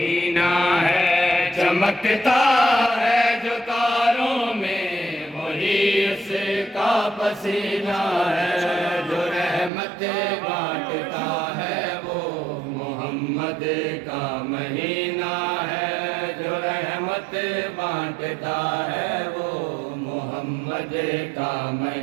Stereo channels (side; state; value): left; drops out; at 9.7 s